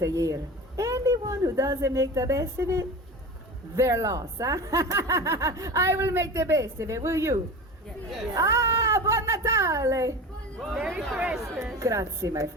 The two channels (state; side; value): normal; both; correlation 0.31